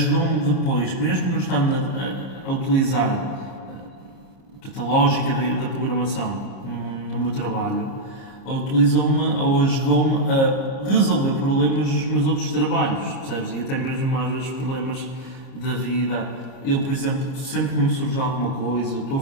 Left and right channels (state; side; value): late; right; 30 ms